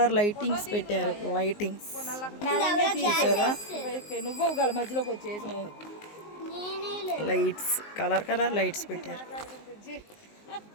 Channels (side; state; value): right; late; 19 ms